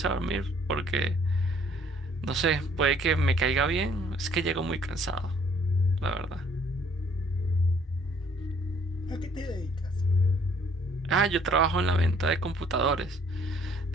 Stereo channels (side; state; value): both; normal; correlation 0.61